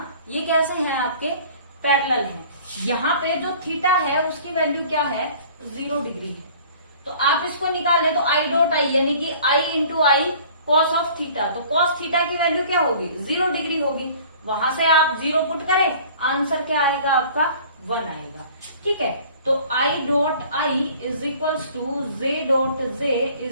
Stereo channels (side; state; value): both; inverted; correlation -0.49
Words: ये कैसे हैं, आपके पैरेलल हैं। यहाँ पे जो थीटा है उसकी वैल्यू क्या है, 0 डिग्री है। तो आप इसको निकालें तो आई डॉट आई यानी कि i into i cos of theta, तो कॉस थीटा की वैल्यू क्या होगी, 0 डिग्री होगी। वहां से आप 0 पुट करें, आंसर क्या आएगा आपका 1 आएगा। ठीक है, तो I dot I is equals to J dot J